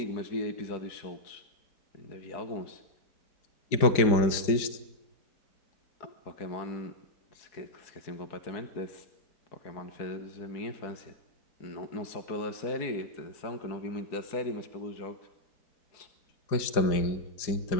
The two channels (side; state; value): right; late; 4.9 ms